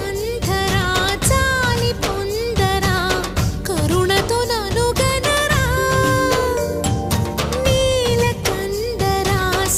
చాలి పొందరా కరుణతో నను గనరా నీలకంఠరా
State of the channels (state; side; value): identical; both; correlation 1.00